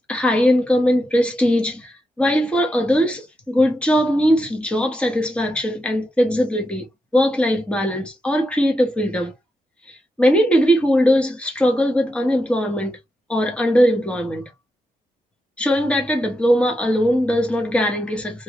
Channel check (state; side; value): normal; both; correlation 0.86